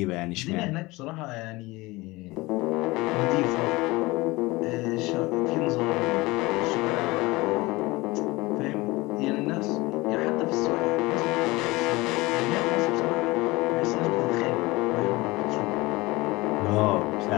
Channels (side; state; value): right; quieter; 21.7 dB